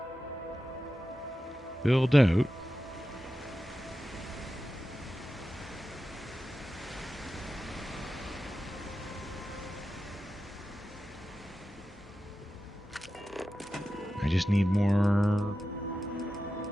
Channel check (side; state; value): both; normal; correlation 0.92